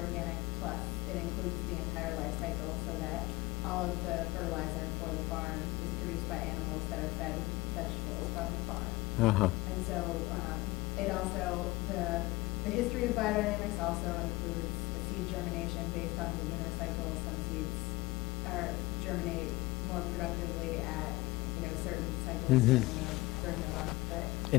plus it includes the entire life cycle so that all of the fertilizer for the farm is produced by animals that are fed with vegetables from the farm. Uh-huh. And so it also, the history of biodynamics also includes a seed germination based on the lunar cycle. Some seeds germinate more productively at certain cycles during the month. But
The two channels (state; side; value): quieter; right; 20.8 dB